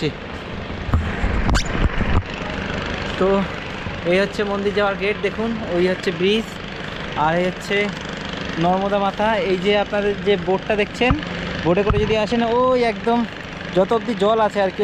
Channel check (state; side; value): identical; both; correlation 1.00